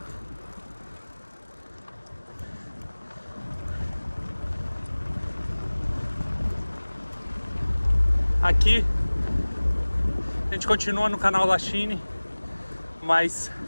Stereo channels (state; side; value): inverted; both; correlation -1.00